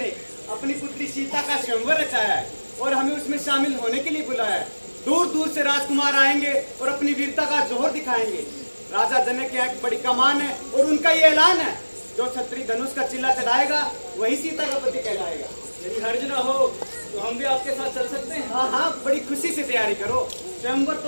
अपनी पुत्री सीता का स्वयंवर रचाया है और हमें उसमें शामिल होने के लिए बुलाया है। दूर दूर से राजकुमार आएंगे और अपनी वीरता का जोहर दिखाएंगे। राजा जनक की एक बड़ी कमान है और उनका ये ऐलान है, जो छत्री धनुष का चिल्ला चढ़ाएगा वही सीता का पति कहलाएगा। यदि हर्ज न हो तो हम भी आपके साथ चल सकते हैं? हाँ हाँ, बड़ी खुशी से तैयारी करो। स्वयंवर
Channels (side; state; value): both; inverted; correlation -1.00